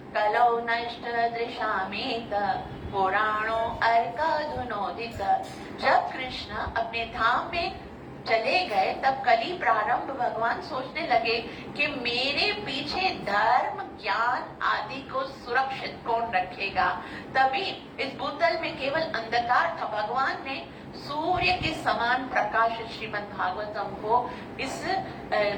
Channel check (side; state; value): both; identical; correlation 1.00